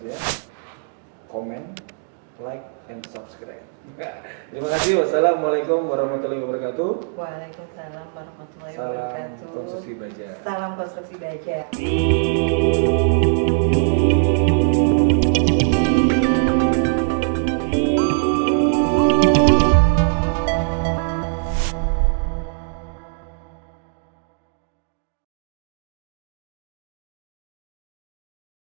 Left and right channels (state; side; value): silent; left; digital silence